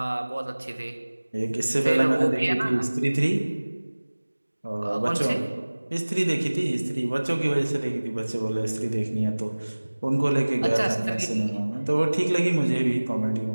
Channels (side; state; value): both; inverted; correlation -1.00